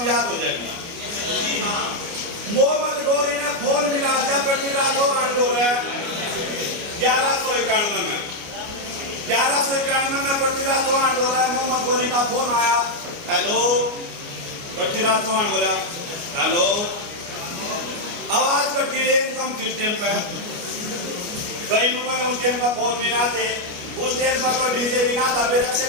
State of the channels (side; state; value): left; late; 29 ms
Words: याद हो जाएगी। मोहम्मद गोरी ने फोन मिला दिया पृथ्वीराज चौहान को 1191 में 1191 में पृथ्वीराज चौहान बोला मोहम्मद गोरी का फोन आया हेलो पृथ्वीराज चौहान बोला हेलो आवाज कट गई एकदम सिस्टम पे कई लोगों ने उस टाइम पर फोन नहीं आते उस टाइम पर तो डीजे भी ना था फिर अक्षय